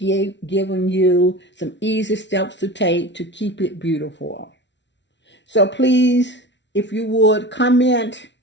you some easy steps to take to keep it beautiful. So please, if you would, comment,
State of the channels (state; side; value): late; right; 0.52 ms